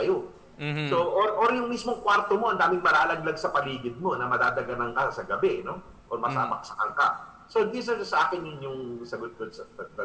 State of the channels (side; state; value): both; identical; correlation 1.00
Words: So, or yung mismong kwarto mo, ang daming malalaglag sa paligid mo na madadaganan ka sa gabi, no? Or masabaksakan ka. So, these are sa akin yung sagot ko